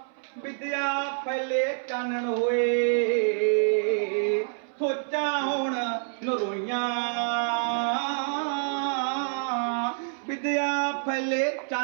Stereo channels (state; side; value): silent; left; 60 dB below the other